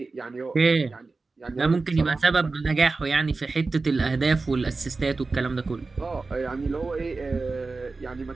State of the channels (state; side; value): quieter; left; 3.8 dB